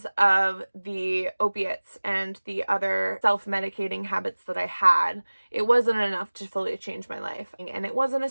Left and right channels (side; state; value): both; inverted; correlation -1.00